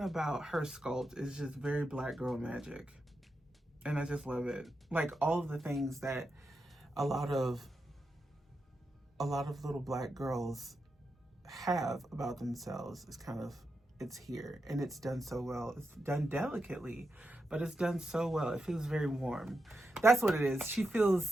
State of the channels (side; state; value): both; normal; correlation 0.87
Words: sculpt is just very Black girl magic. And I just love it. Like, all of the things that a lot of little Black girls have about themselves is kind of, it's here. And it's done so well. It's done delicately, but it's done so well. It feels very warm. That's what it is. She